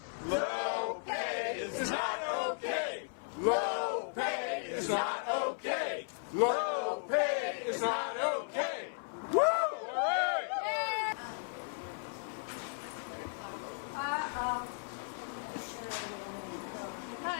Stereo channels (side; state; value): right; silent; 54 dB below the other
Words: Low pay is not okay. Low pay is not okay. Low pay is not okay. Woo! All right.